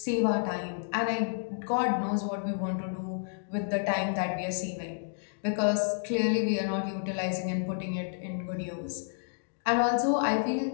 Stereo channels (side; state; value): right; silent; digital silence